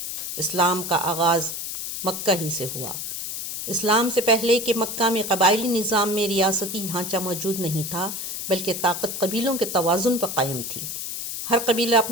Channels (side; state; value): left; noise; hiss, 5 dB below the sound